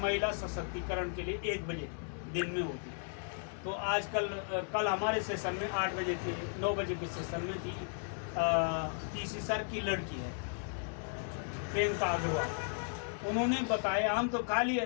महिला सशक्तिकरण के लिए 1 बजे दिन में होती है। तो आजकल कल हमारे सेशन में 8 बजे थी, 9 बजे के सेशन में थी, तीसरी सर की लड़की है प्रियंका अग्रवाल। उन्होंने बताया, हम तो खाली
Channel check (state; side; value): silent; right; 54 dB below the other